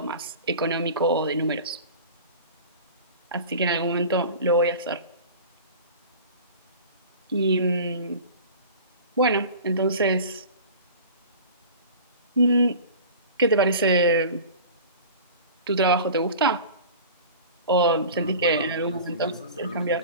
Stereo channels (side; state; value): both; inverted; correlation -0.38